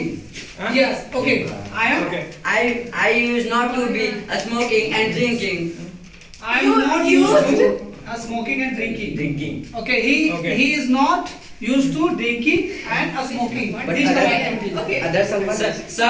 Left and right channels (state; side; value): identical; both; correlation 1.00